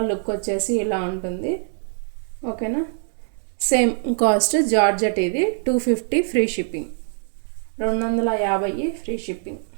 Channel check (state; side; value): silent; left; 63 dB below the other